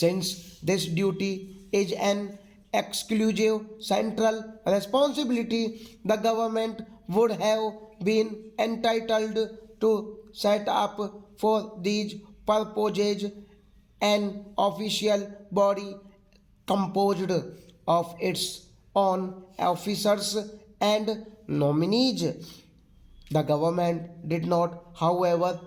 this duty is an exclusive central responsibility, the government would have been entitled to set up for these purposes an official body composed of its own officers and nominees. The government did not,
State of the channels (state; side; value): identical; both; correlation 1.00